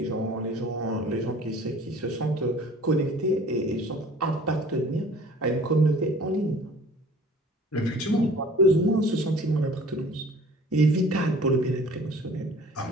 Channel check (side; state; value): both; normal; correlation 0.48